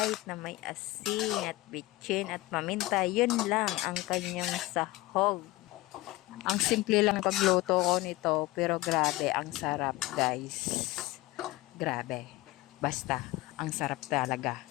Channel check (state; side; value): quieter; right; 18.7 dB